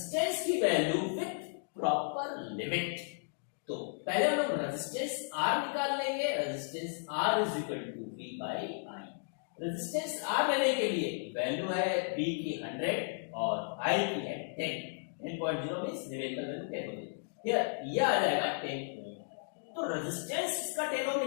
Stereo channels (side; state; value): right; silent; digital silence